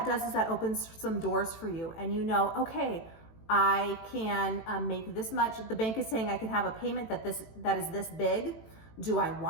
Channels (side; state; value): right; late; 18 ms